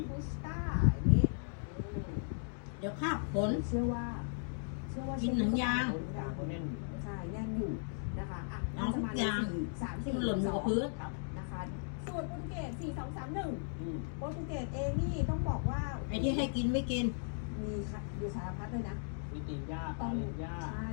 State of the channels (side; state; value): right; silent; digital silence